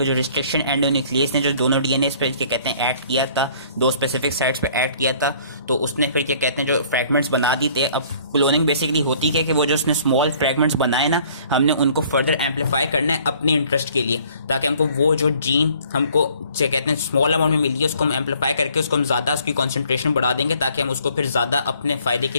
जो रिस्ट्रिक्शन एंडोन्यूक्लियस ने जो दोनों डीएनए पे क्या कहते हैं एक्ट किया था, दो स्पेसिफिक साइट्स पे एक्ट किया था, तो उसने फिर क्या कहते हैं जो फ्रेगमेंट्स बना दी थे। अब क्लोनिंग बेसिकली होती है कि वो जो उसने स्मॉल फ्रेगमेंट्स बनाए ना, हमने उनको फर्दर एम्पलीफाई करना है अपने इंटरेस्ट के लिए, ताकि हमको वो जो जीन हमको क्या कहते हैं स्मॉल अमाउंट में मिली है उसको हम एम्पलीफाई करके उसको हम ज़्यादा उसकी कॉन्सेंट्रेशन बढ़ा देंगे, ताकि हम उसको फिर ज़्यादा अपने फ़ायदे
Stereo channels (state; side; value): inverted; both; correlation -0.56